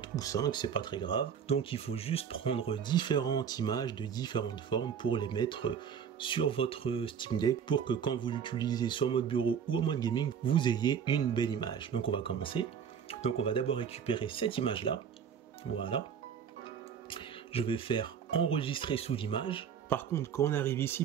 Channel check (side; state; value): left; quieter; 7.5 dB